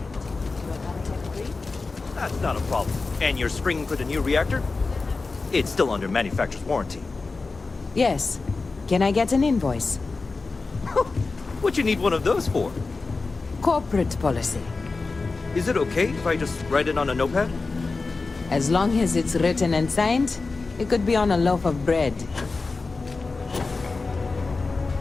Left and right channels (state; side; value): quieter; right; 3.9 dB